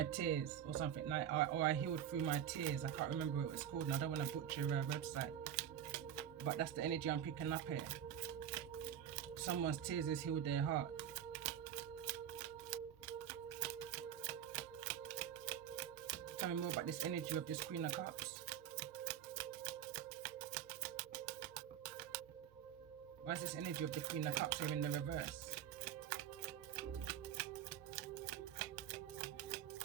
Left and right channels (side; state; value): left; quieter; 9.9 dB